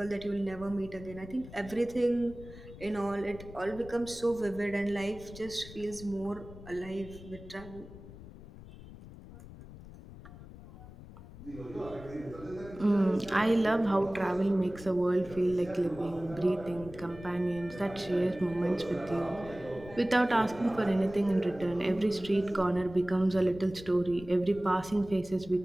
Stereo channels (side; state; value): left; noise; rumble, 16 dB below the sound